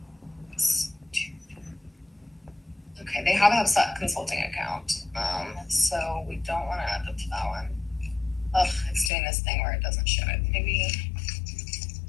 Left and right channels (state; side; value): drops out; right; at 9.1 s